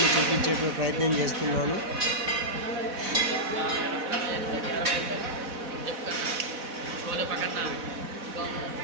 చూపించేటువంటి ప్రయత్నం చేస్తున్నాను.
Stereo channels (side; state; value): left; late; 4.1 ms